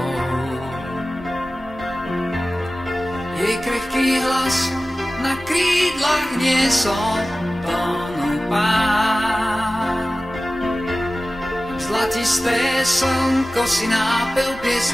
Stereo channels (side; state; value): both; normal; correlation 0.96